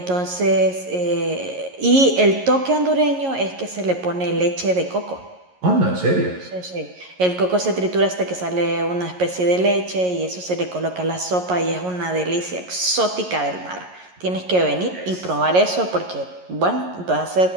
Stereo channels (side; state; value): left; late; 11 ms